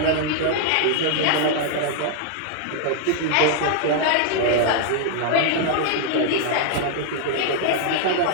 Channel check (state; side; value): different; both; correlation -0.01